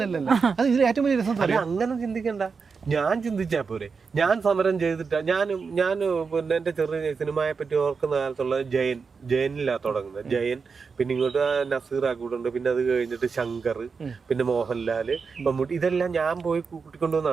അങ്ങനെ ചിന്തിക്കണ്ട. ഞാൻ ചിന്തിച്ചാ പോരെ. ഞാൻ സമരം ചെയ്തിട്ടാ ഞാൻ പിന്നെ എന്റെ ചെറിയ സിനിമയെ പറ്റി ഓർക്കുന്ന കാലത്തുള്ള ജയനിലാ തുടങ്ങുന്നത്. ജയൻ, പിന്നെ ഇങ്ങോട്ട് നസീർ ആക്കൂട്ടുണ്ട്, പിന്നെ അത് കഴിഞ്ഞിട്ട് ശങ്കർ, പിന്നെ മോഹൻലാല്, മമ്മൂട്ടി, ഇതെല്ലാം ഞാൻ പോയി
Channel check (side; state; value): left; quieter; 5.2 dB